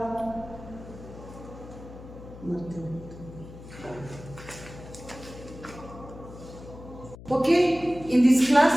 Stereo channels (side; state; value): left; noise; hum, 15 dB below the sound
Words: Okay, in this